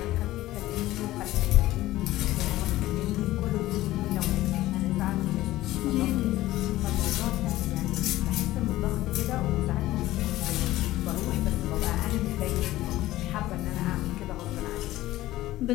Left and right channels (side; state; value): right; quieter; 16.1 dB